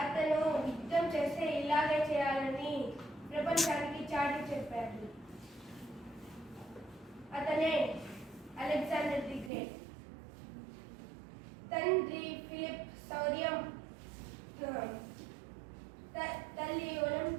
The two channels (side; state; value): left; drops out; at 9.5 s